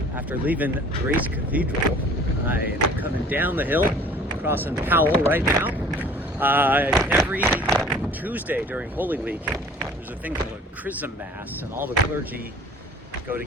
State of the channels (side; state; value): both; normal; correlation 0.49